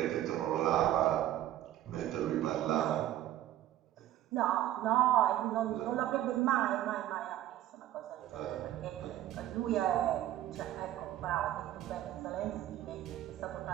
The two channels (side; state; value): left; quieter; 13.2 dB